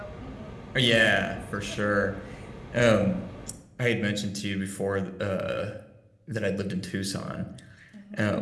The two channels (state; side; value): identical; both; correlation 1.00